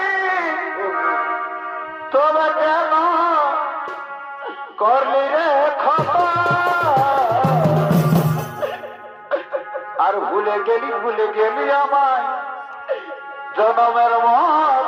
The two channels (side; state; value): both; identical; correlation 1.00